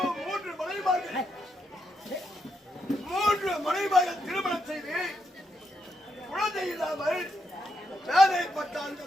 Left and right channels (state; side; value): normal; both; correlation 0.81